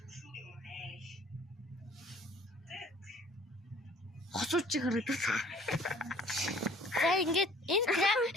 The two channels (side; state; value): both; normal; correlation 0.53